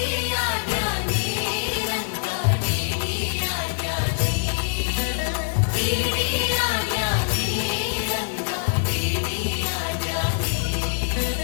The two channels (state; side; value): silent; right; 63 dB below the other